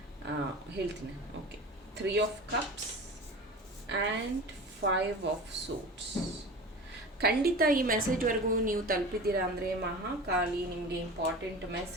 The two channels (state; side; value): normal; both; correlation 0.34